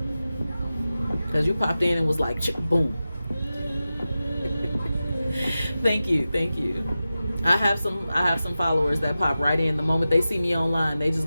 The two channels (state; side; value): inverted; both; correlation -0.94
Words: Because you popped in and was like, boom. Thank you. I have some followers that pop right in. The moment they see me online, they just